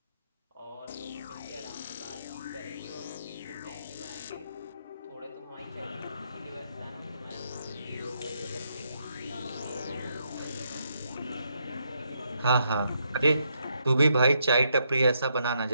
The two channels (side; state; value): both; inverted; correlation -0.78